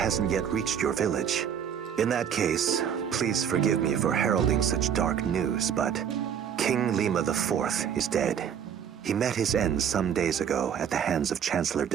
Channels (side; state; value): left; quieter; 8.4 dB